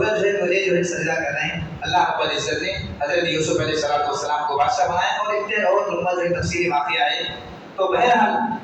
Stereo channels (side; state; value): both; identical; correlation 1.00